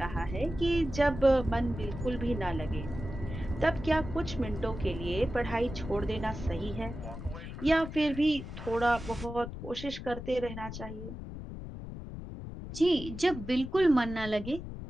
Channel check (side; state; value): left; noise; rumble, 9 dB below the sound